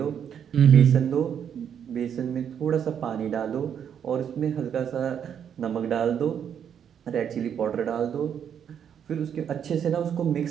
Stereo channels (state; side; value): quieter; left; 8.4 dB